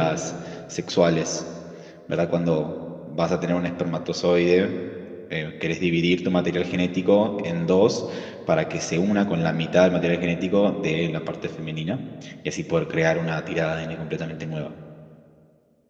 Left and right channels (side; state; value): both; identical; correlation 1.00